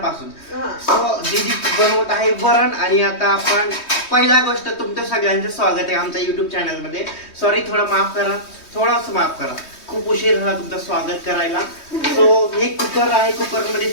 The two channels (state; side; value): late; right; 3.2 ms